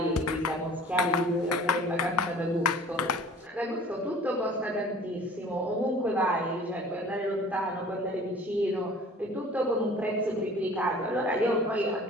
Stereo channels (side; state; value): both; normal; correlation 0.47